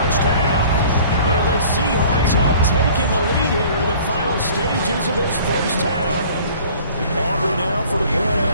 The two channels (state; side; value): inverted; both; correlation -0.49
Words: half. And the Seahawks have taken the lead here in the final stages of this first half. Aubrey now for the point